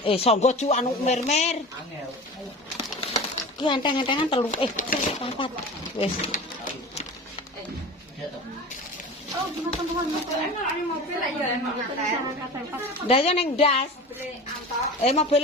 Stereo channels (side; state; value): both; normal; correlation 0.34